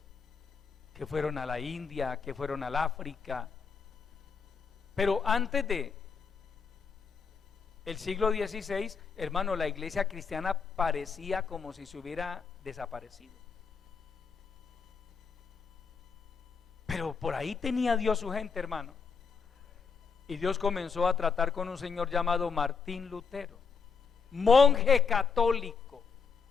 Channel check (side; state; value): right; quieter; 5.4 dB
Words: que fueron a la India, que fueron al África. Pero antes de el siglo XVI, hermano, la iglesia cristiana parecía como si se hubiera desaparecido. Pero por ahí tenía Dios su gente, hermano. Y Dios comenzó a tratar con un señor llamado Martín Lutero, monje católico.